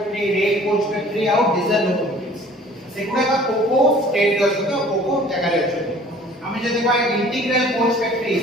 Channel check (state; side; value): normal; both; correlation 0.51